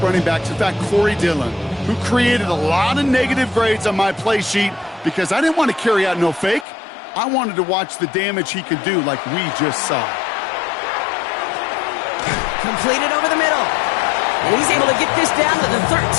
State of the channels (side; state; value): right; drops out; at 6.7 s